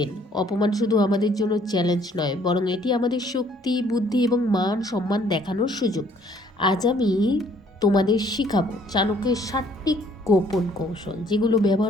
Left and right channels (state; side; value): normal; both; correlation 0.61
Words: অপমান শুধু আমাদের জন্য চ্যালেঞ্জ নয়, বরং এটি আমাদের শক্তি, বুদ্ধি এবং মান সম্মান দেখানোর সুযোগ। আজ আমি তোমাদের শিখাবো চাণক্যের 7টি গোপন কৌশল, যেগুলো